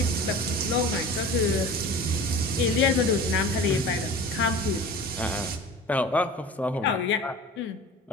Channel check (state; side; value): normal; both; correlation 0.37